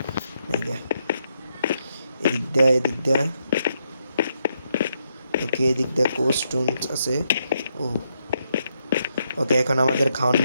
এদিক দেয়া ওকে, এদিক দিয়ে কোস্টোন আছে। ও ওকে, এখন আমাদের খাওয়ান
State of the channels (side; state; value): both; inverted; correlation -0.80